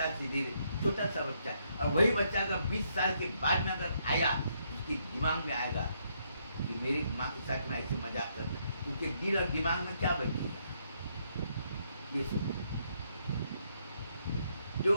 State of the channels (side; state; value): both; inverted; correlation -0.74